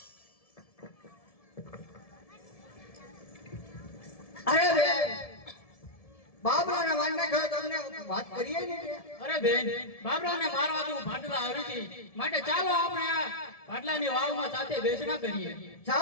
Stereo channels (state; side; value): late; right; 1.7 ms